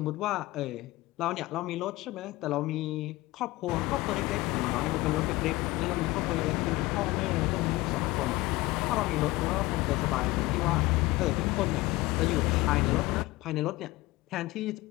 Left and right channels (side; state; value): right; quieter; 19.6 dB